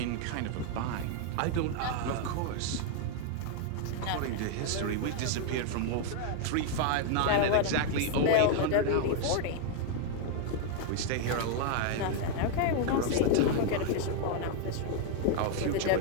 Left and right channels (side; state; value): both; different; correlation 0.00